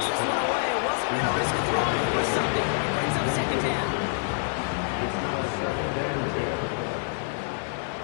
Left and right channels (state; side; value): silent; right; digital silence